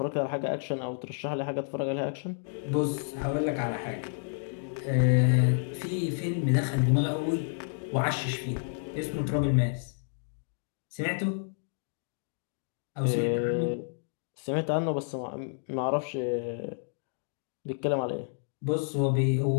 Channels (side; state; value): right; silent; digital silence